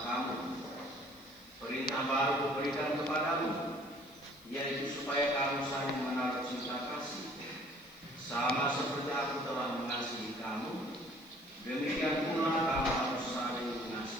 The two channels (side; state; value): left; noise; hiss, 25 dB below the sound